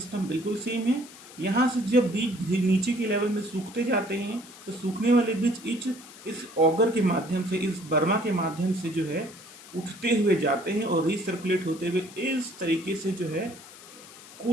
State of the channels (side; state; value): left; noise; hiss, 18 dB below the sound